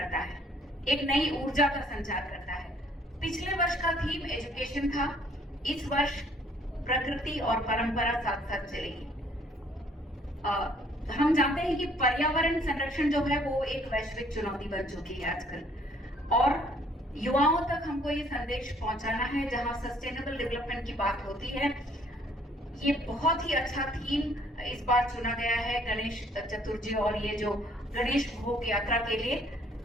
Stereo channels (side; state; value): both; normal; correlation 0.61